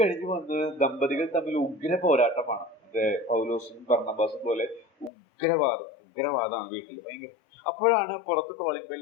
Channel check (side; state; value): right; drops out; at 5.1 s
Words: വന്ന് ദമ്പതികൾ തമ്മിൽ ഉഗ്ര പോരാട്ടമാണ്. പൗലോസും ബർന്നബാസും പോലെ ഉഗ്രവാദമാണ് വീട്ടിൽ, ഭയങ്കര. അപ്പോഴാണ് പുറത്ത് കോളിംഗ്